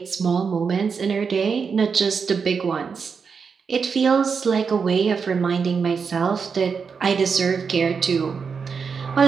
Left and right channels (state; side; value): quieter; left; 5.7 dB